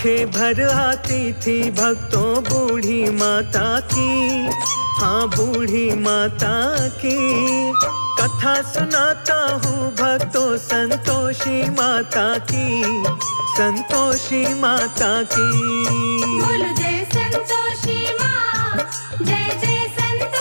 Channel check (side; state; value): both; inverted; correlation -1.00